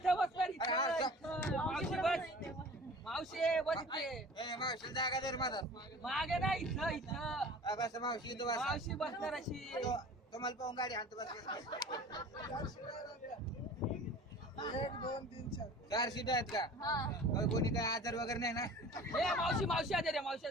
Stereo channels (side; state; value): both; normal; correlation 0.42